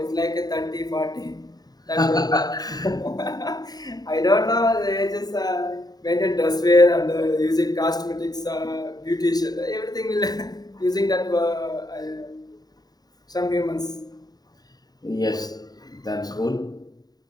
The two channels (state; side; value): late; right; 0.19 ms